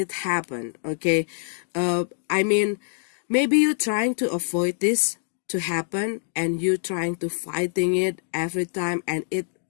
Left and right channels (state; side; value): silent; right; digital silence